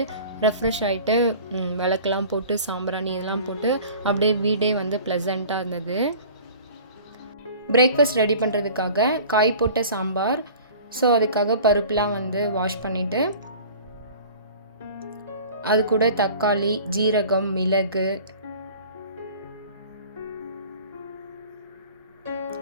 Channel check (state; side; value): inverted; both; correlation -0.43